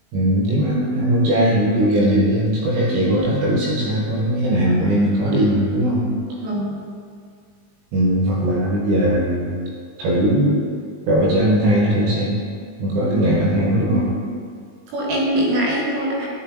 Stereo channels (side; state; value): left; late; 20 ms